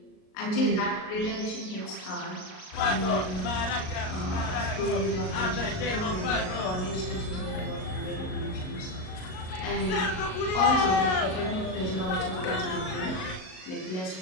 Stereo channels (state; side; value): late; right; 38 ms